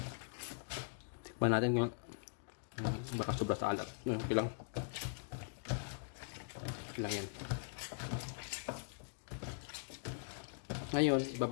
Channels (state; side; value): silent; right; digital silence